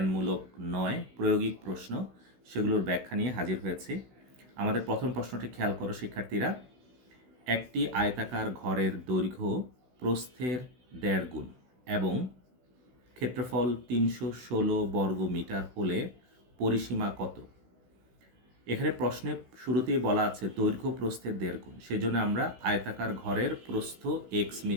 নয়, প্রায়োগিক প্রশ্ন, সেগুলোর ব্যাখ্যা নিয়ে হাজির হয়েছি। আমাদের প্রথম প্রশ্নটি খেয়াল করো শিক্ষার্থীরা। একটি আয়তাকার ঘরের দৈর্ঘ্য প্রস্থের 1.5 গুণ এবং ক্ষেত্রফল 316 বর্গ মিটার হলে পরিসীমা কত? এখানে প্রশ্নে শুরুতেই বলা আছে দৈর্ঘ্য প্রস্থের 1.5 গুণ, সেজন্য আমরা আয়তাকার ঘরের প্রস্থ x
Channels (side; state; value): left; late; 16 ms